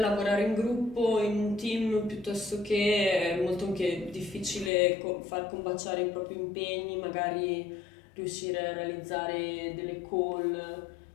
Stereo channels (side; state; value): right; drops out; at 4.7 s